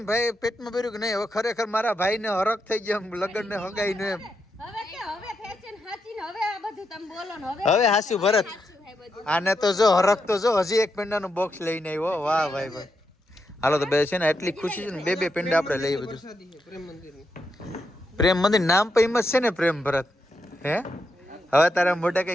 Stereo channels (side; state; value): both; normal; correlation 0.83